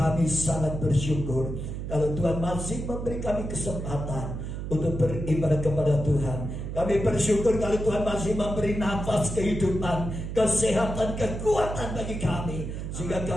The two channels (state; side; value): noise; right; hum, 6 dB below the sound